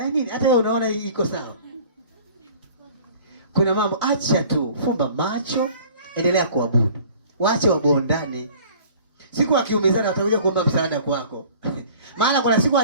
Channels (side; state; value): both; inverted; correlation -0.48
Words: nini? Hata wewe unaona hii iko sawa. Kuna mambo acha tu, fumba macho, endelea kuabudu. Waache wabondane. Siku akiumizana watakuja kuomba msaada kwako. Maana kuna siku